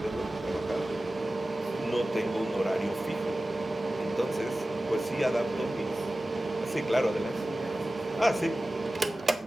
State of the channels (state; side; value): normal; both; correlation 0.96